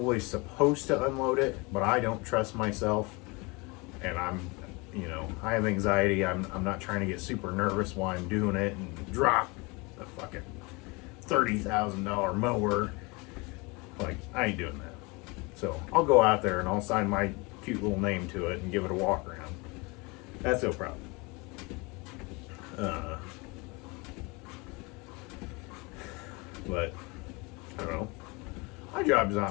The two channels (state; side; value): quieter; right; 27.1 dB